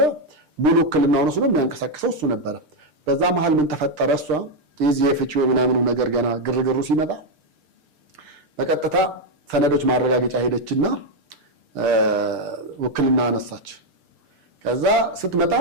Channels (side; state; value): left; late; 6.7 ms